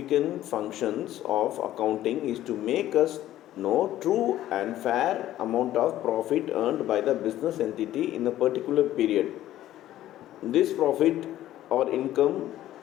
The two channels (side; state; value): right; quieter; 13.5 dB